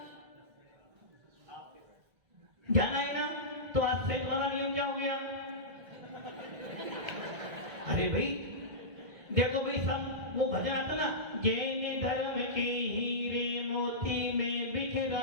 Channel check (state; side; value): late; left; 1.6 ms